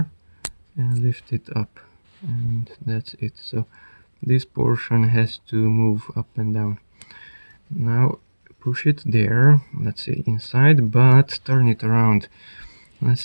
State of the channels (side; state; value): both; inverted; correlation -1.00